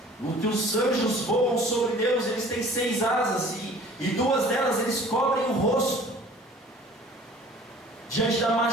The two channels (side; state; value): both; normal; correlation 0.48